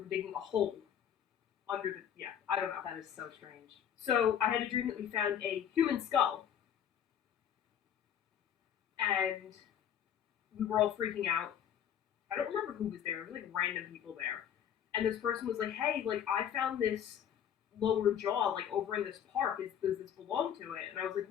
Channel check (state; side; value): quieter; right; 9.3 dB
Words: digging a hole under the, I don't know. That is so strange. So, I had a dream that we found a human skull. And we were all freaking out. I don't remember who was there. It was random people there. And this person was like, hey, I found this lower jaw, over in this park. Does this belong to